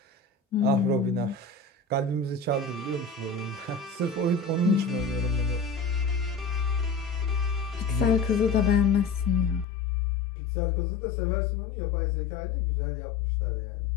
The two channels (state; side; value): drops out; right; at 9.7 s